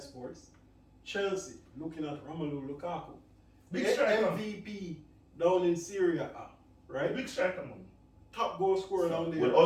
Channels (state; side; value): identical; both; correlation 1.00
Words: Chelsea looking at Romelu Lukaku, Big the striker. MVP down in Syria, right? Big striker, man. Top goal scorer down there. Will